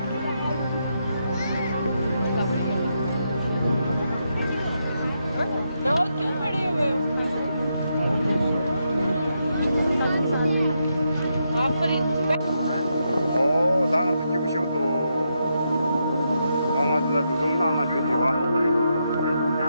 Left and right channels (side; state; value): both; inverted; correlation -0.82